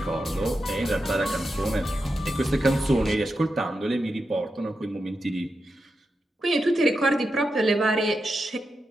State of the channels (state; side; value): normal; both; correlation 0.88